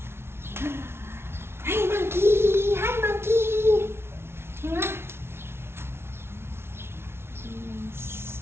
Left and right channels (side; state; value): left; late; 0.12 ms